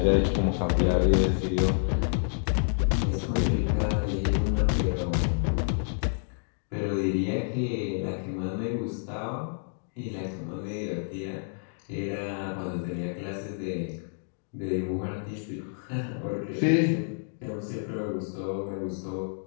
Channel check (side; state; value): right; silent; digital silence